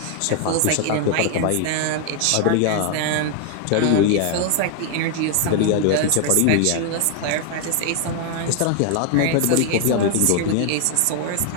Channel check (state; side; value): different; both; correlation 0.00